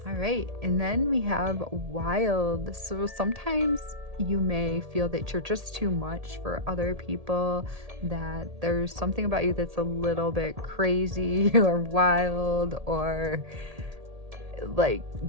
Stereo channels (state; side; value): late; left; 1.8 ms